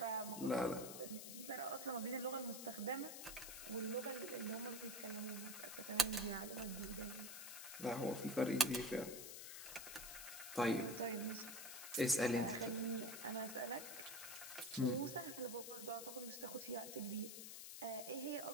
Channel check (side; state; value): left; noise; hiss, 8 dB below the sound